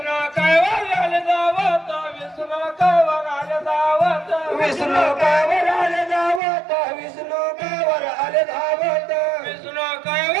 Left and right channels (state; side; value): drops out; left; at 6.4 s